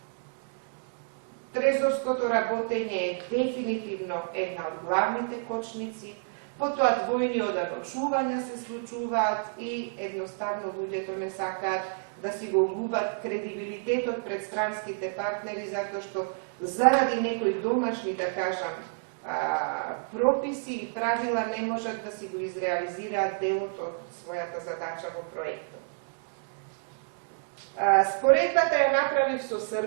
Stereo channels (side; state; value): left; silent; digital silence